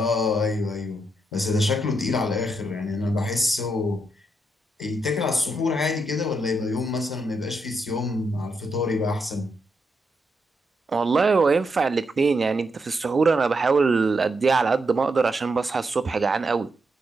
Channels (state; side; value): normal; both; correlation 0.81